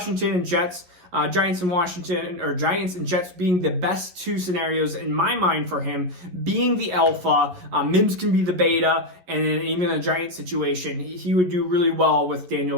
and Jets, Giants and Jets being the best 2 scenarios in my mind for him, being the alpha, Mims can be the beta, and then even in a Giant situation, he would do really well with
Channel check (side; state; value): left; late; 11 ms